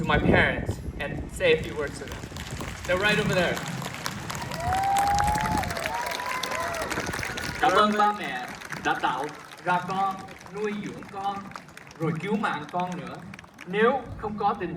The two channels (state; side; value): identical; both; correlation 1.00